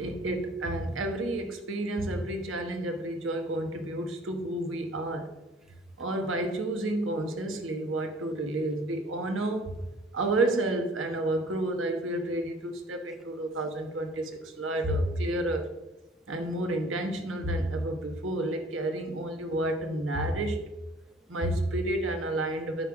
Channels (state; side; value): normal; both; correlation 0.52